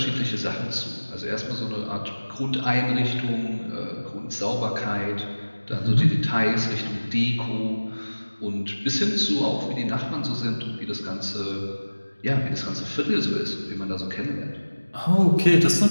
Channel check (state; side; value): inverted; both; correlation -1.00